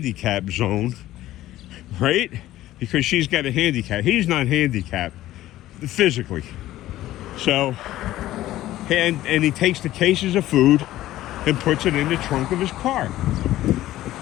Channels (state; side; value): quieter; right; 14.8 dB